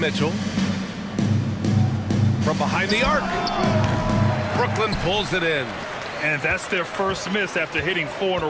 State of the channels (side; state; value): both; identical; correlation 1.00